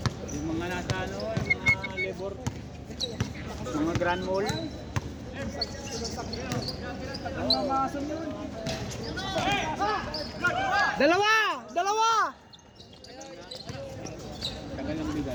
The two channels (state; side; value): identical; both; correlation 1.00